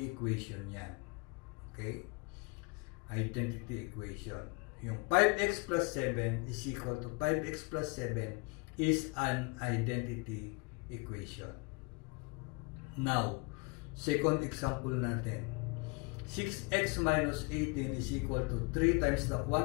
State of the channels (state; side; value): quieter; right; 30.0 dB